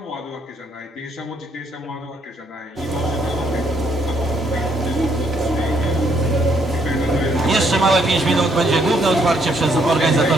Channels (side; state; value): both; normal; correlation 0.70